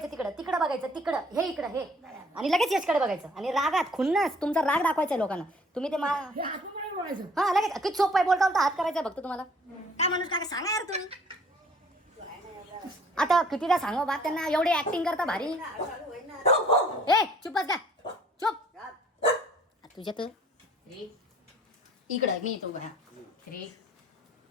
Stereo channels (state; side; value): normal; both; correlation 0.56